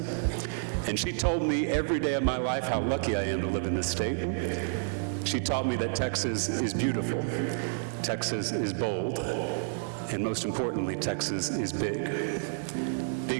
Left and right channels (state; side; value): silent; left; digital silence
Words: And she told me every day of my life how lucky I am to live in this state. She taught me that Texas is beautiful, Texas is bold, and most importantly, Texas is big.